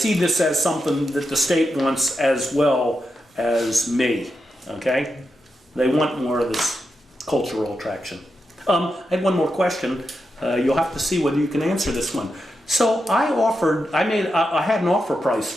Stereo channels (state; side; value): normal; both; correlation 0.87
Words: this as something that the state wants as well as me, okay? They want more of this cultural attraction. I had one more question. You'll have to see whether you can answer this one. So I had an offer price